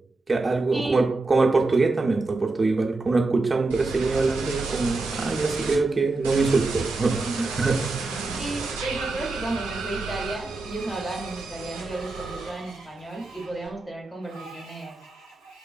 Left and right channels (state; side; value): quieter; left; 3.3 dB